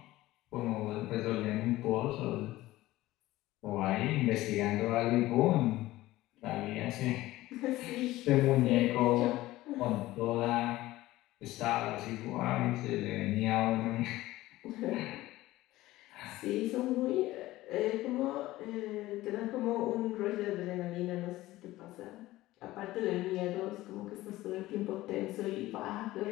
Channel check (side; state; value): right; quieter; 17.0 dB